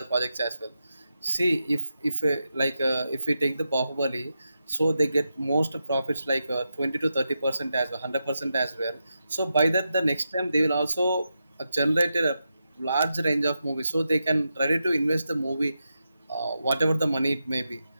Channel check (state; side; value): inverted; both; correlation -0.88